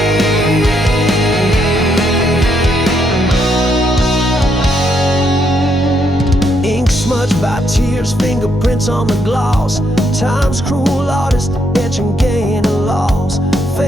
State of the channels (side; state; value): both; normal; correlation 0.76